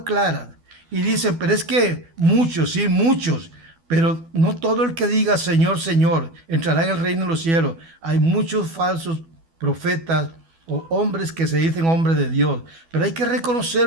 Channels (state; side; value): late; left; 12 ms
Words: claras. Y dicen, pero es que muchos, sí, muchos, pero no todo el que diga Señor, Señor, entrará en el reino de los cielos. Hay muchos falsos profetas o hombres que se dicen hombres de Dios. Pero hay que